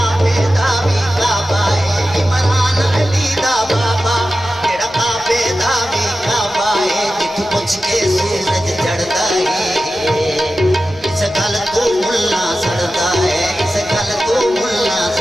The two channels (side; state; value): left; noise; hum, 26 dB below the sound